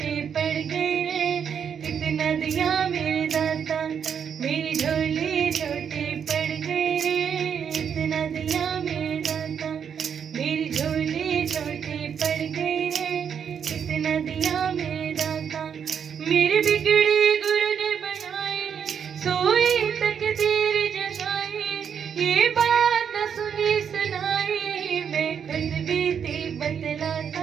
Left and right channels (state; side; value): quieter; left; 7.6 dB